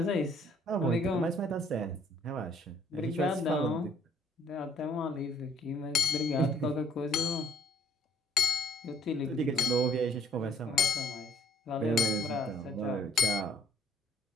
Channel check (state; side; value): normal; both; correlation 0.61